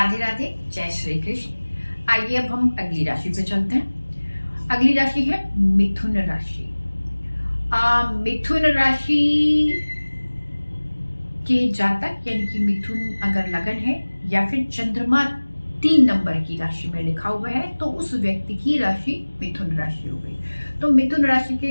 राधे, जय श्री कृष्ण। आइए अब हम अगली राशि पे चलते हैं। अगली राशि है मिथुन राशि। मिथुन राशि के जातक यानी कि मिथुन अगर लगन है या फिर चंद्रमा 3 नंबर की राशि में लिखा हुआ है तो उस व्यक्ति की राशि मिथुन राशि हो गई। तो मिथुन राशि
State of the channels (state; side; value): inverted; both; correlation -1.00